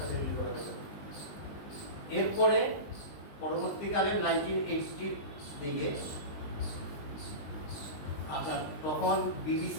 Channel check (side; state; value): right; late; 20 ms